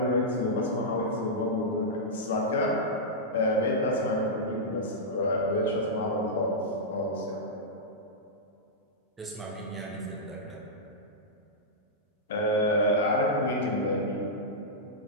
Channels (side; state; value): both; normal; correlation -0.10